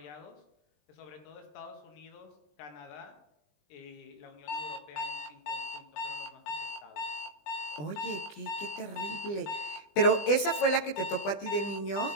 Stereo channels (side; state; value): right; late; 20 ms